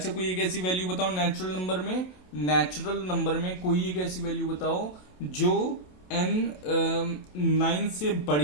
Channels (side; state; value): right; late; 27 ms